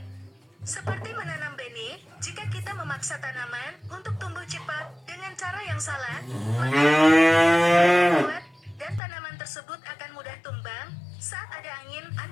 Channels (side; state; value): right; drops out; at 9.0 s